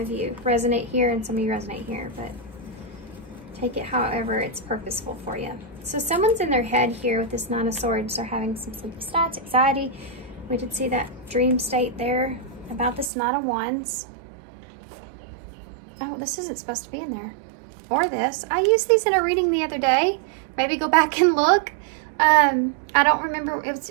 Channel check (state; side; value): drops out; left; at 13.1 s